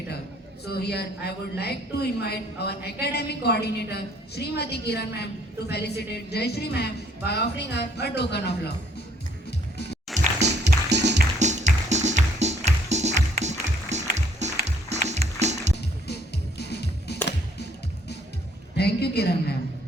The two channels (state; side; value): normal; both; correlation 0.63